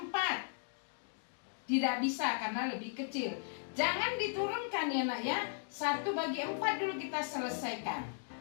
Tidak bisa karena lebih kecil. Jangan diturunkan ya nak ya. 1 bagi 4 dulu kita selesaikan.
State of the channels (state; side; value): silent; right; digital silence